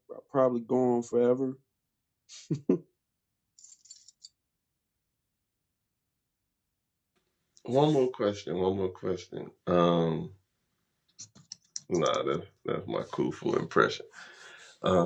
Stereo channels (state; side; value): identical; both; correlation 1.00